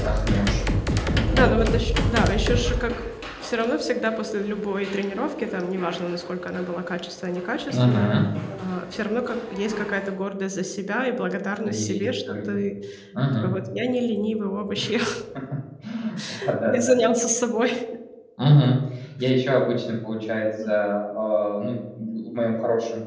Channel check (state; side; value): identical; both; correlation 1.00